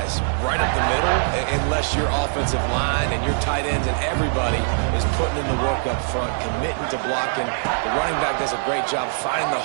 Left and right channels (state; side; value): silent; left; digital silence